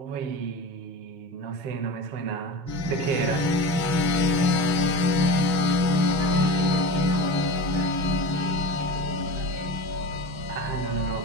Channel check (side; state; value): left; late; 6.2 ms